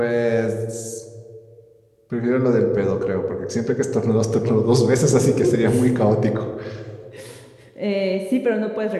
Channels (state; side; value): identical; both; correlation 1.00